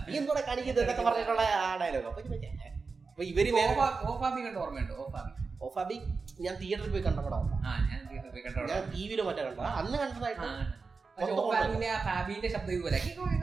നീ എന്തോടെ കാണിക്കുന്നത് എന്നൊക്കെ പറഞ്ഞിട്ടുള്ള ആ ഡയലോഗ്. അപ്പൊ ഇവര് ഓർമ്മയുണ്ടോ? ഓഫാബി ഞാൻ തിയേറ്ററിൽ പോയി കണ്ട പടം, ഞാൻ ടിവിയിലോ മറ്റേ കണ്ട, അന്ന് കണ്ടതായിട്ട്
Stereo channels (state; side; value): quieter; left; 4.5 dB